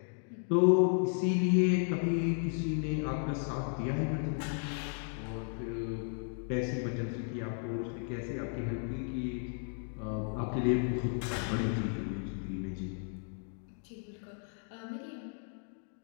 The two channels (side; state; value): right; silent; 55 dB below the other